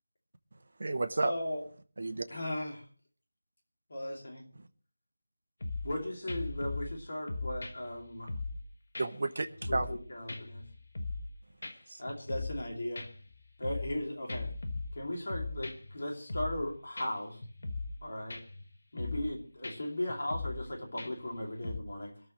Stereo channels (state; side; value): inverted; both; correlation -0.94